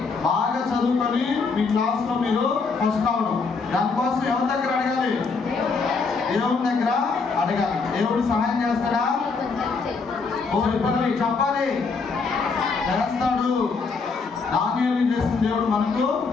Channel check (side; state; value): right; quieter; 4.6 dB